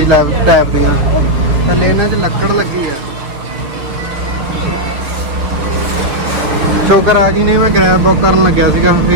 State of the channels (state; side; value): late; left; 7.3 ms